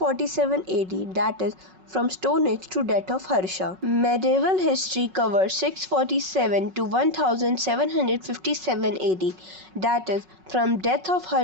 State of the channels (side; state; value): left; late; 5.4 ms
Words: AD, that is from Stone Age to death of Harsha. Medieval history covers 647 to 1757 AD, that is from death of